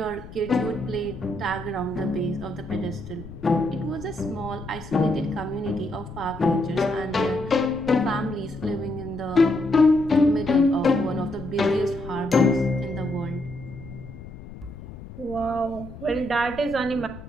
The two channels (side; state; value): left; noise; rumble, 14 dB below the sound